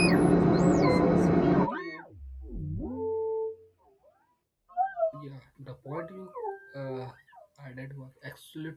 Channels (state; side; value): identical; both; correlation 1.00